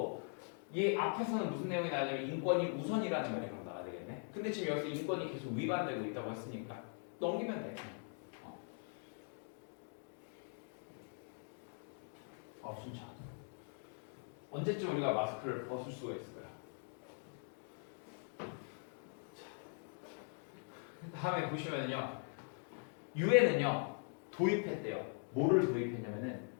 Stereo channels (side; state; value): right; silent; 50 dB below the other